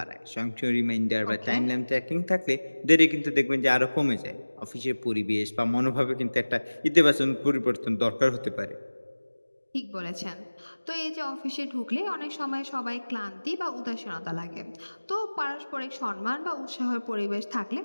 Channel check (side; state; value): both; inverted; correlation -1.00